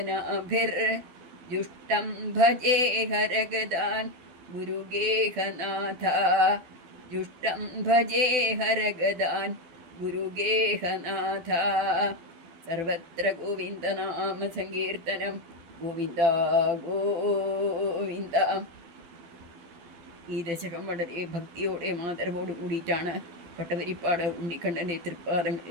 ജുഷ്ടം ഭജേ ഹരഗദാൻ ഗുരുഗേഹനാഥ. ജുഷ്ടം ഭജേ ഹരഗദാൻ ഗുരുഗേഹനാഥ. സർവത്ര ഗോവിന്ദനാമ സങ്കീർത്തനം. ഗോവിന്ദ ഗോവിന്ദ. ഈ ദശകം വളരെ ഭക്തിയോടെ ആദരവോടു കൂടിയിട്ടാണ് പട്ടവരിപ്പാട് ഉണ്ണിക്കണ്ണൻ്റെ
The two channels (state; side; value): late; left; 12 ms